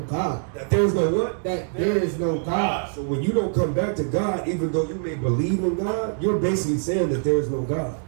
That there's no what? That there is no God. So when you don't come back to God, even though you may believe in God, you're basically saying that there is no God.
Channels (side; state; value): left; silent; 63 dB below the other